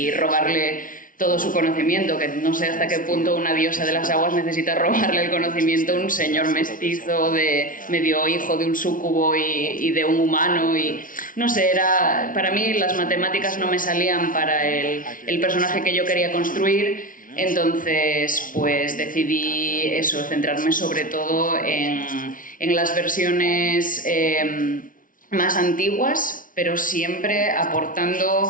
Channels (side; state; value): right; late; 0.39 ms